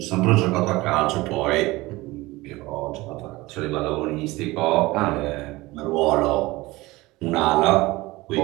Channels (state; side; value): quieter; left; 20.4 dB